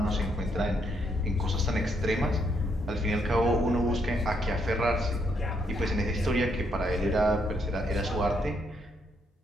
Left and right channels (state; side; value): normal; both; correlation 0.75